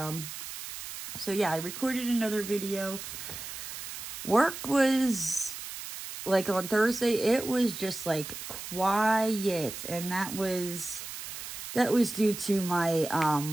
So yeah, I recorded another video. Work was, like on Thursday, it was just like quiet. And that was due to my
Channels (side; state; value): right; noise; hiss, 9 dB below the sound